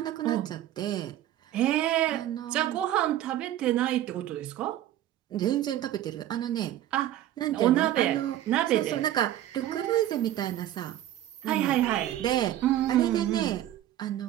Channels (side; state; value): left; quieter; 12.8 dB